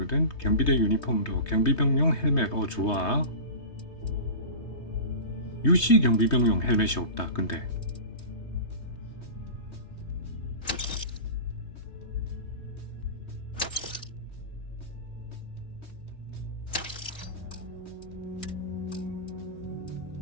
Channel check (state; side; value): late; right; 3.2 ms